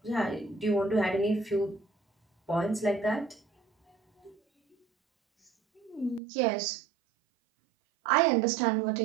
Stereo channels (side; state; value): left; drops out; at 6.2 s